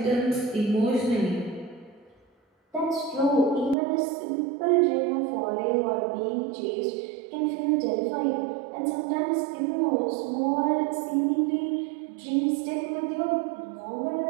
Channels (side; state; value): left; drops out; at 3.8 s